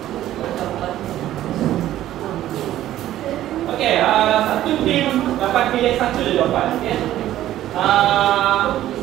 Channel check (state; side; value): quieter; left; 13.3 dB